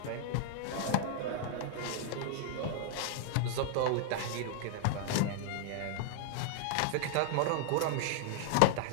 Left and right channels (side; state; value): both; different; correlation 0.00